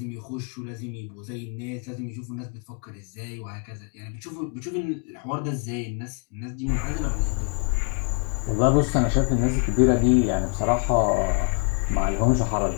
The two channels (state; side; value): quieter; right; 36.2 dB